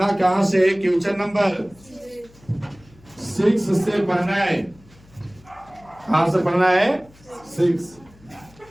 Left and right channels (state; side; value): noise; left; hum, 26 dB below the sound